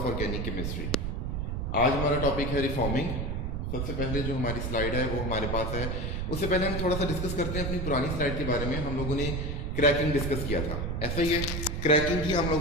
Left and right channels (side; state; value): right; noise; rumble, 2 dB below the sound